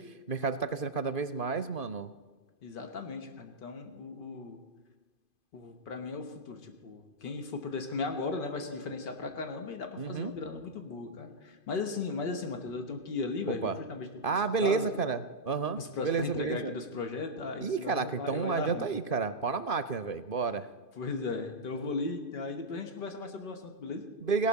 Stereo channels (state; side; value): late; right; 2.5 ms